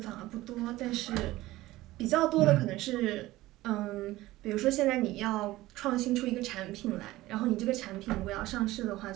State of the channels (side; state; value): left; quieter; 17.4 dB